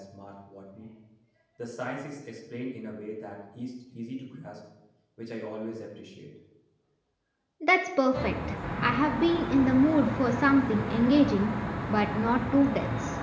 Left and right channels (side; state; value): both; identical; correlation 1.00